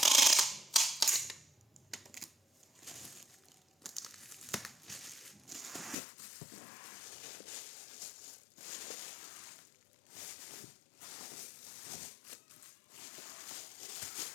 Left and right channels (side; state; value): right; drops out; at 6.0 s